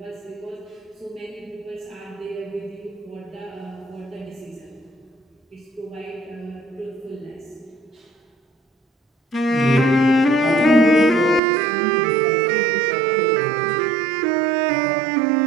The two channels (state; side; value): drops out; left; at 11.4 s